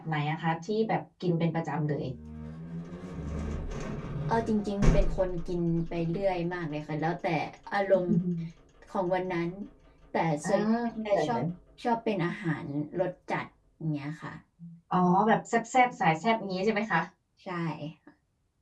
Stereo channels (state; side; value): identical; both; correlation 1.00